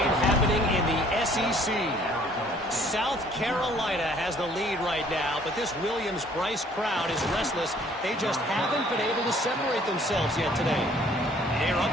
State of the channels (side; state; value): both; normal; correlation 0.58